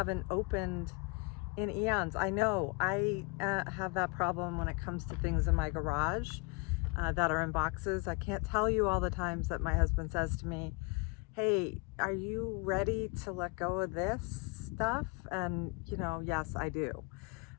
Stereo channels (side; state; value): right; quieter; 28.2 dB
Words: opened in eons. I know I have that problem when it comes to things in my garage that are in boxes. I can't tell you all the times that my husband says to me, hey, are you ready to let go of this stuff? And, you know, yes, I do.